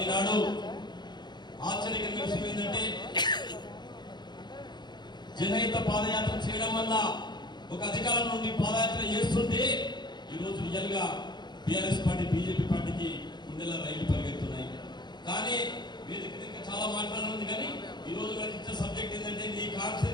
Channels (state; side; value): late; right; 0.21 ms